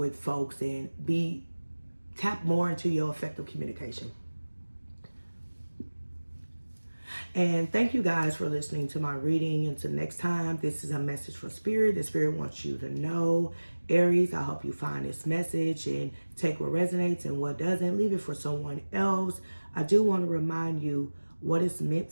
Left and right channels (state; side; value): inverted; both; correlation -1.00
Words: folks and tap more into your effective communication. And thank you guys for listening to my reading. Until next time, this is a message from Spirit. The Spirit wants you to know, Aries, I hope you find this message and take what resonates and what doesn't. Leave it for someone else. I do want to remind you, what is meant